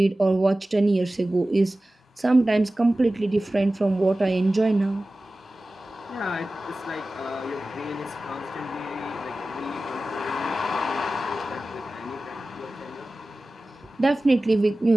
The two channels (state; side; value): normal; both; correlation 0.96